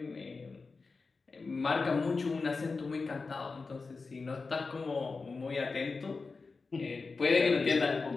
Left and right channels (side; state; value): right; quieter; 4.2 dB